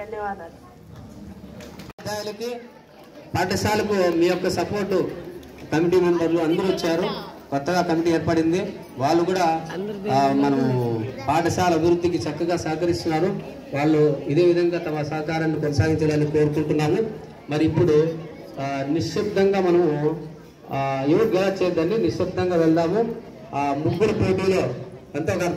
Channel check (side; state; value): both; identical; correlation 1.00